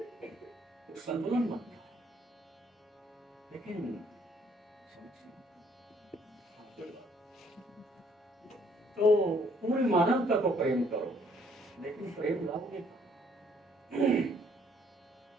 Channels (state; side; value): normal; both; correlation 0.64